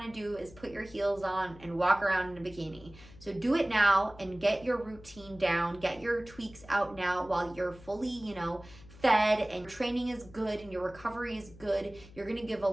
to do is put your heels on and walk around in a bikini. So do it now and get your routine down, get your tweaks out now while you're fully, you know, fed and training is good and your recovery is good. You're going to give a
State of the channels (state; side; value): noise; left; hum, 20 dB below the sound